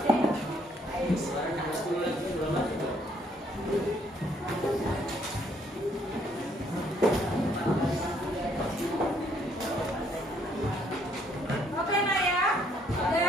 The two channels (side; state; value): both; normal; correlation 0.67